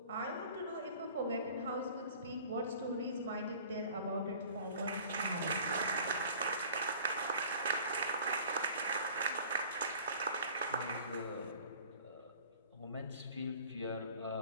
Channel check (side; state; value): both; inverted; correlation -0.47